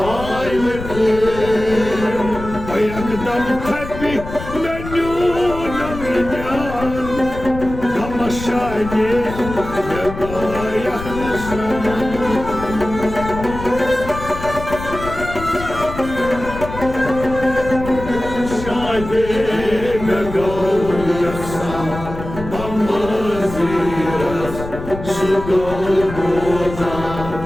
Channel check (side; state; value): left; noise; rumble, 10 dB below the sound